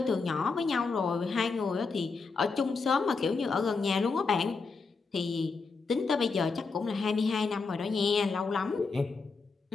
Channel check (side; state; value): right; quieter; 4.5 dB